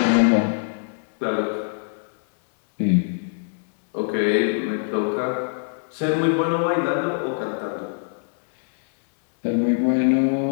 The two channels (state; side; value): silent; right; digital silence